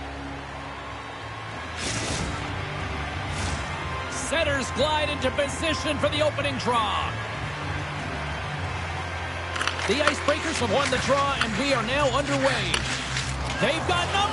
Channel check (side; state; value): both; identical; correlation 1.00